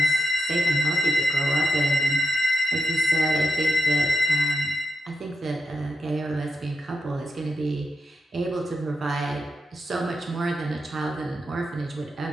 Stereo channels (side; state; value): both; normal; correlation 0.87